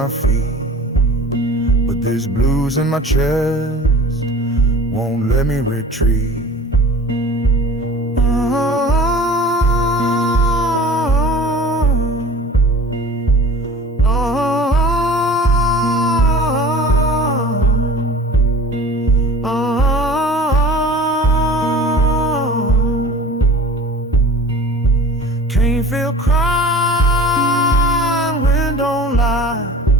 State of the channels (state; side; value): normal; both; correlation 0.42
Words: feet. But this blues in my chest won't let me retreat.